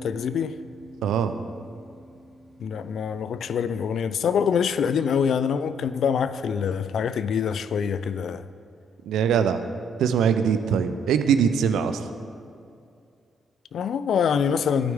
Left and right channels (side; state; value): both; normal; correlation 0.64